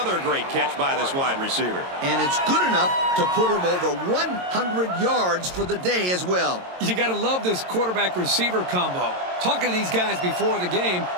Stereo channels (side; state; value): left; late; 22 ms